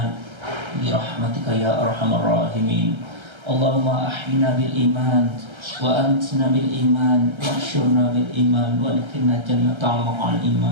bi rahmatika ya arhamar rahimin. Allahumma ahyina bil iman wa antna bil iman wa ahsyurna bil iman wa adkhilna jannata ma'al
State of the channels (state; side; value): late; left; 1.3 ms